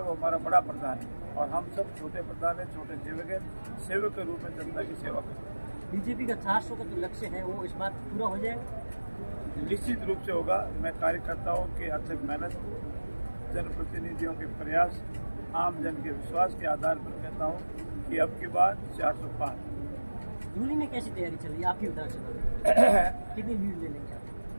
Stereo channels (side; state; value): both; inverted; correlation -1.00